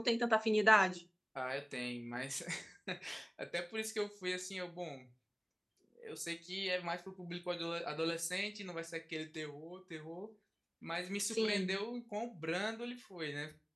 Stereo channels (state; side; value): identical; both; correlation 1.00